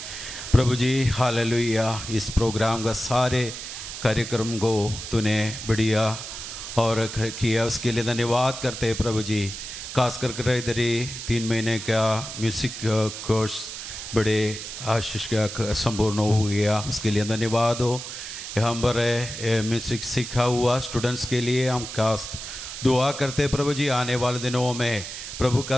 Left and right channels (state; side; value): noise; right; hiss, 9 dB below the sound